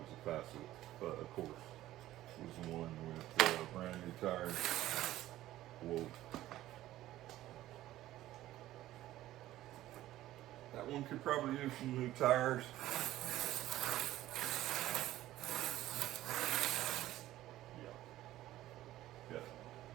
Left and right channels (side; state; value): left; quieter; 14.8 dB